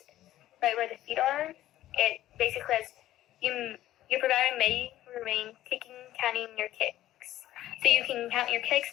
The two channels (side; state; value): right; quieter; 13.9 dB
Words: right where the feet are, it basically says your provider may remain counting your kicks. So you can count your kicks